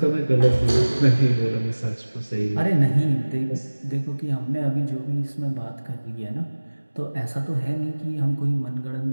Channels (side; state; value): both; inverted; correlation -1.00